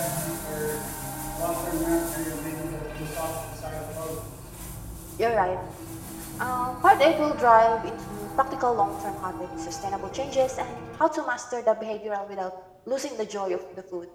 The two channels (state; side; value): identical; both; correlation 1.00